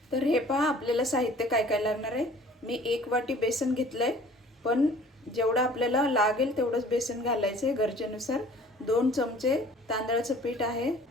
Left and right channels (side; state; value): both; normal; correlation 0.50